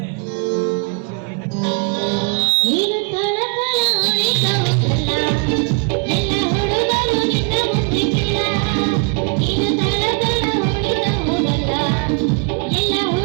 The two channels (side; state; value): left; quieter; 36.2 dB